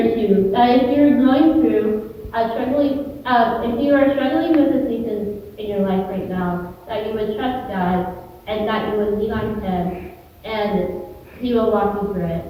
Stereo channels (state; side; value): identical; both; correlation 1.00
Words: you that if you're going through if you are struggling with a season in your life right now, that you would trust God and that you would lean on Him, and He will walk you through it.